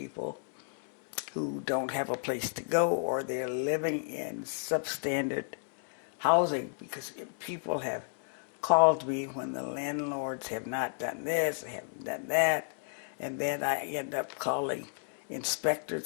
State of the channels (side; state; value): right; silent; digital silence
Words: who don't have a place to go, or they're living in substandard housing, because people have called me when the landlords have not done this, haven't done that, and then I end up calling